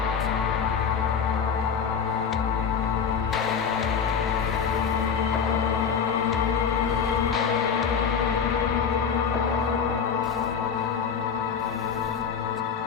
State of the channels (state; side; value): quieter; right; 6.7 dB